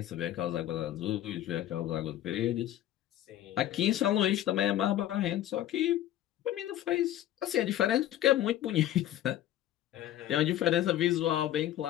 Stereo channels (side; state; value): right; quieter; 12.7 dB